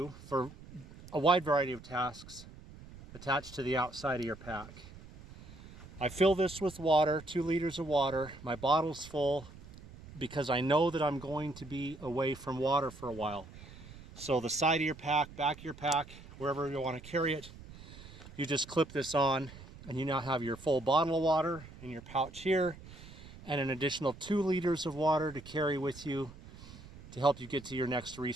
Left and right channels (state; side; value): noise; right; rumble, 17 dB below the sound